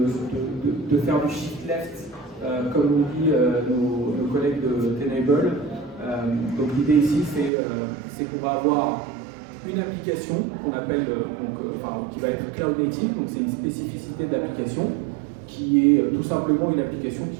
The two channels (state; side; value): drops out; left; at 7.5 s